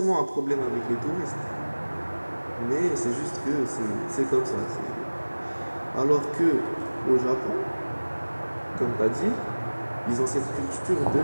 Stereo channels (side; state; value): both; inverted; correlation -1.00